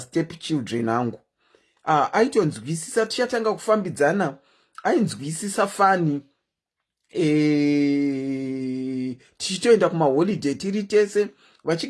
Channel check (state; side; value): identical; both; correlation 1.00